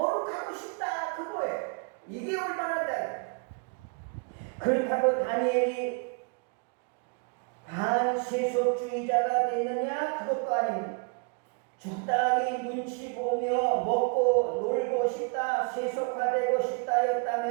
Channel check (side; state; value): left; quieter; 34.3 dB